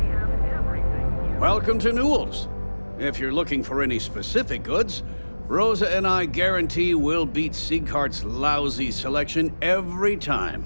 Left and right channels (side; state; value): both; inverted; correlation -1.00